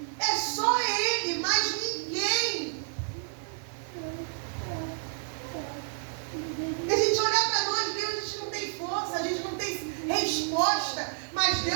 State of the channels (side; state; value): left; silent; 58 dB below the other